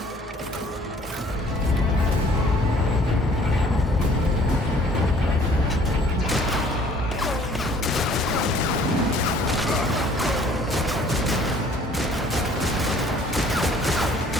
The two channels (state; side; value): normal; both; correlation 0.56